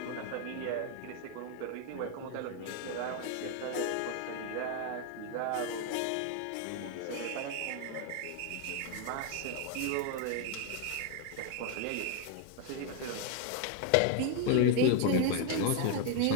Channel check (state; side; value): different; both; correlation 0.01